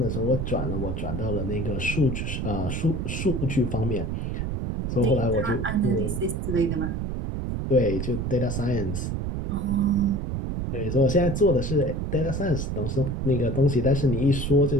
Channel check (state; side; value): noise; right; rumble, 2 dB below the sound